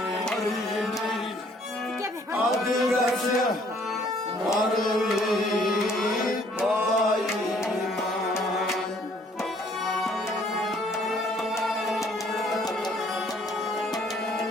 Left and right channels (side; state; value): both; normal; correlation 0.61